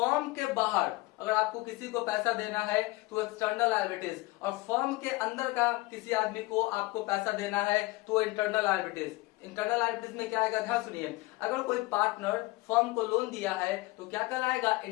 के बाहर अगर आपको किसी को पैसा देना है तो एक्सटर्नल लायबिलिटीज, और फर्म के अंदर का किसी आदमी को आपको पैसा देना है तो इंटरनल लायबिलिटीज। इंटरनल लायबिलिटीज में क्या आएगा, ध्यान सुनिए, अगर कोई पार्टनर फर्म को लोन दिया है तो क्या कहलाएगा,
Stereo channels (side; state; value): right; quieter; 21.6 dB